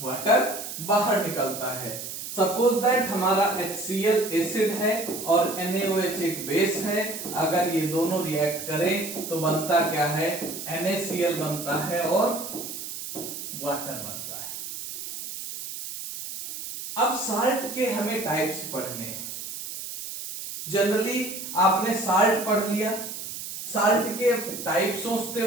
बाहर निकलता है। सपोज दैट हमारा HCl एसिड है और NaOH एक बेस है। अगर ये दोनों रिएक्ट करें तो बनता क्या है? NaCl बनता है और वाटर बनता है। अब साल्ट के हमें टाइप्स पढ़ने हैं। जनरली आपने साल्ट पढ़ लिया, साल्ट के टाइप सोचते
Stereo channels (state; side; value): noise; right; hiss, 8 dB below the sound